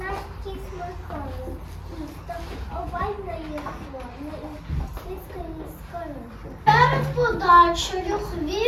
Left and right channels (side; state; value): both; identical; correlation 1.00